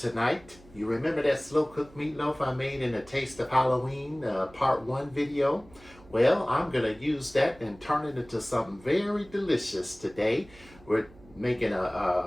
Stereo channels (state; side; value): noise; right; hum, 24 dB below the sound